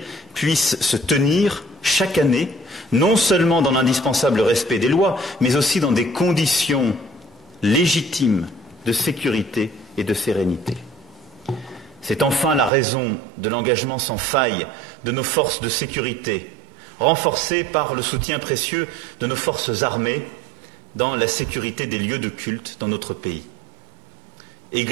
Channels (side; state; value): left; drops out; at 12.7 s